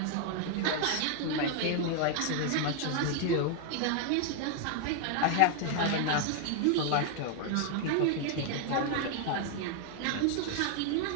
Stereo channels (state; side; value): different; both; correlation 0.00